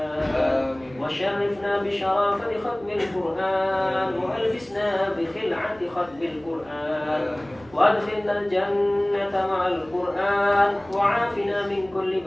وشرفنا بشرافة ختم القرآن وألبسنا بخلعة ختم القرآن وأدخلنا الجنة مع القرآن وعافنا من كل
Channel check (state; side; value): noise; right; hum, 25 dB below the sound